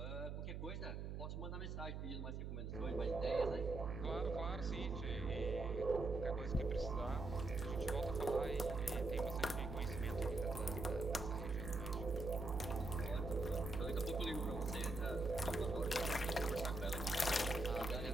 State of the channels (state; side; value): noise; right; hum, 4 dB below the sound